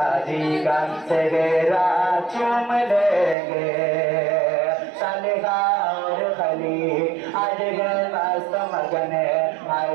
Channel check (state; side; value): drops out; left; at 3.4 s